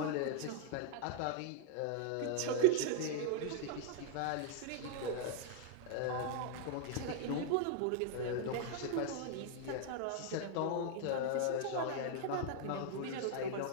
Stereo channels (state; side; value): different; both; correlation 0.00